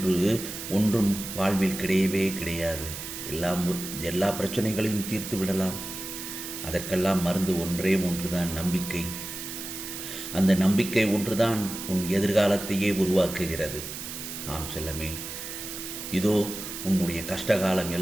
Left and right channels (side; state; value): right; noise; hiss, 8 dB below the sound